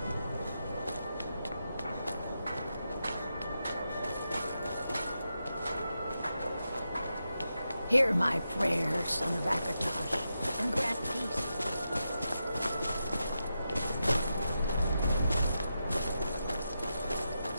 Hear my prayer, son of Akatosh, and grant peace.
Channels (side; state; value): both; inverted; correlation -0.88